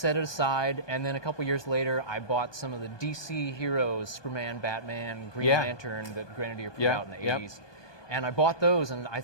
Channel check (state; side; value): late; right; 1.2 ms